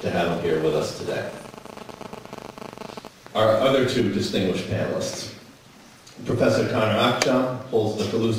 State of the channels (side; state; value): both; identical; correlation 1.00